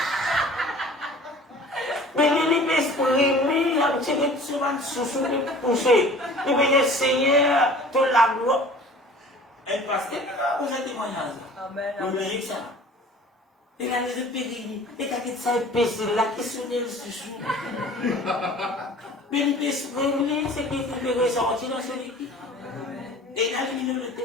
mais il est exprimé, un petit peu de sous-sous, de pousser. Il veut dire, Seigneur, tout la gloire. Un pasteur, vous êtes témoignage. Amen. Vous voyez ça? Et là, les péris, et quand il s'est péché, là, qui sonne le sous-sous. Mais il peut exprimer ce qui peut ressortir dans son équipe. Et là, il nous dit,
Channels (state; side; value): normal; both; correlation 0.46